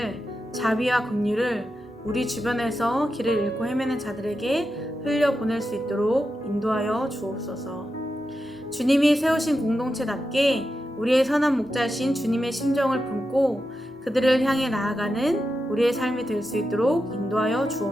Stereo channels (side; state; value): both; normal; correlation 0.89